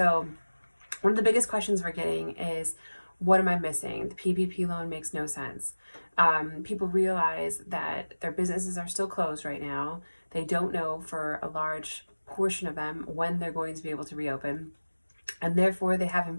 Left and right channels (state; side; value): inverted; both; correlation -1.00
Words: one of the biggest questions we're getting is, what am I missing? The PPP loan makes no sense. People realize that their businesses are still closed right now. They don't know for a large portion of them when they're going to be able to reopen, and therefore they have